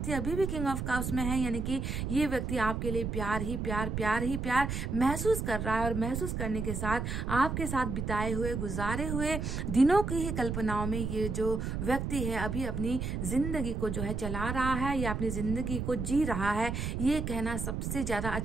अभी भी किंग ऑफ कप्स में है, यानी कि ये व्यक्ति आपके लिए प्यार ही प्यार, प्यार ही प्यार महसूस कर रहा है, और महसूस करने के साथ आपके साथ बिताए हुए, गुजारे हुए दिनों की ही कल्पनाओं में ये जो व्यक्ति है अभी अपनी जिंदगी को जो है चला रहा है या अपनी जिंदगी को जी रहा है। ये कहना सबसे ज्यादा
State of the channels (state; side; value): noise; right; rumble, 3 dB below the sound